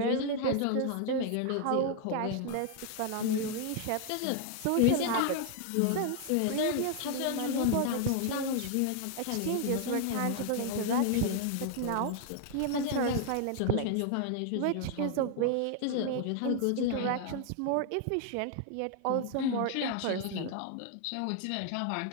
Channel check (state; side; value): different; both; correlation 0.00